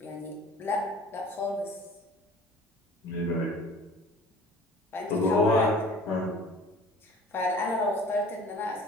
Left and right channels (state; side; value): normal; both; correlation 0.46